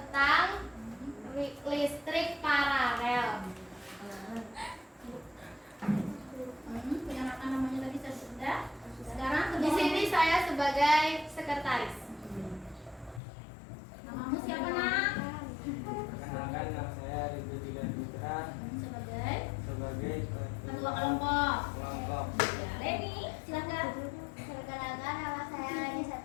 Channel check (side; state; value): right; drops out; at 13.2 s